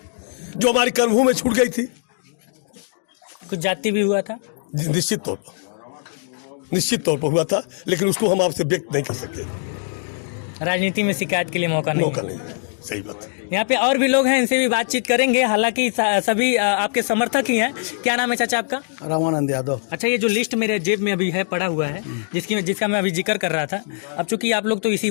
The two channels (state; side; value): silent; right; 65 dB below the other